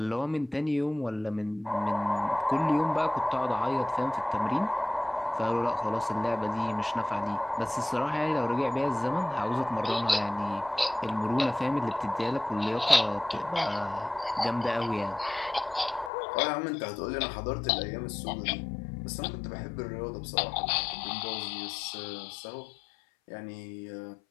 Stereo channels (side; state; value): right; drops out; at 16.1 s